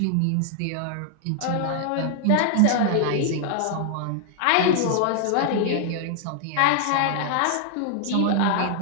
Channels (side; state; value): both; different; correlation 0.00